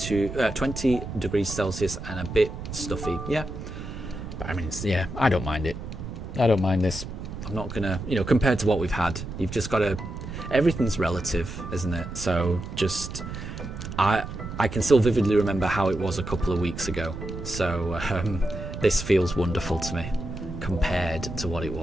degrees Celsius and a bit stuffy. Yeah, but I mean, I don't mind it. I don't mind this. I'm not gonna, compared to what we've had, you've just got to. Everything's relative, isn't it? So just, I can still vividly remember how it was a couple of weeks ago. So this feels wonderful to me compared to what it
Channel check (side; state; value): right; noise; rumble, 8 dB below the sound